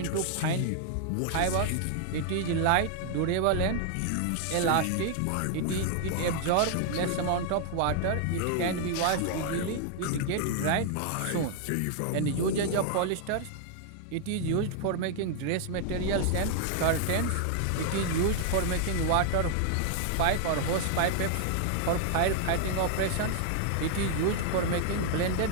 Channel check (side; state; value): both; different; correlation 0.00